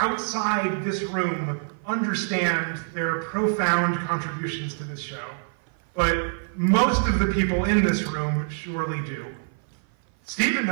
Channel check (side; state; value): left; silent; 55 dB below the other